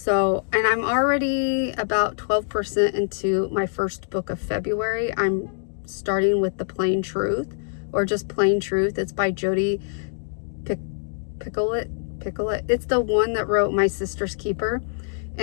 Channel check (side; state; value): right; silent; digital silence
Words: and I'm already about 12% into my first book of February. I'm starting with The Plain Truth, or just Plain Truth. It's by Jodi Picoult. It's the one that wrote My Sister's Keeper.